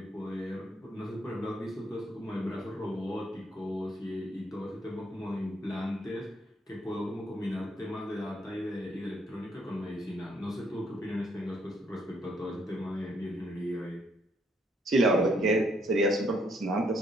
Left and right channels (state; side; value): normal; both; correlation 0.70